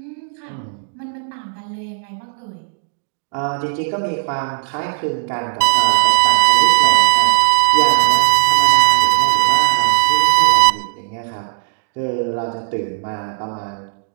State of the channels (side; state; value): left; silent; digital silence